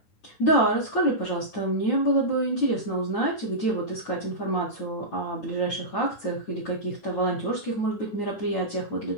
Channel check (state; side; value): late; right; 9.8 ms